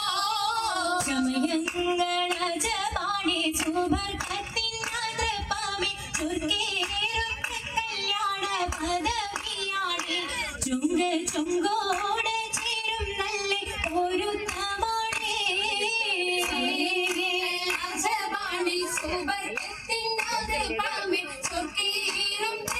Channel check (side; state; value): both; identical; correlation 1.00